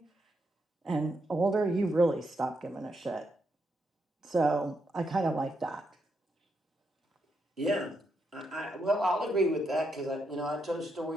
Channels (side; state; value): both; normal; correlation 0.80